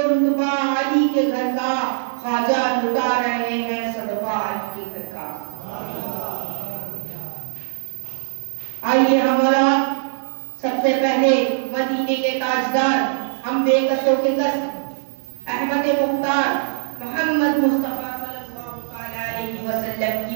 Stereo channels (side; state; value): left; silent; 65 dB below the other